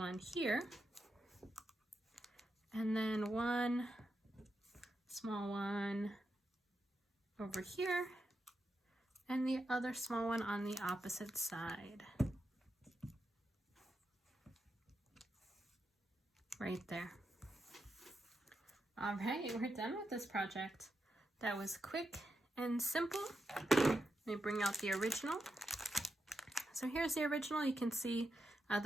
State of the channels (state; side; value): normal; both; correlation 0.86